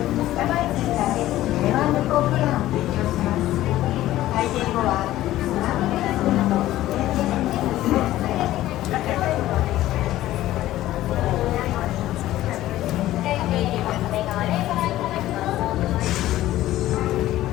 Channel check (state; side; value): quieter; right; 14.8 dB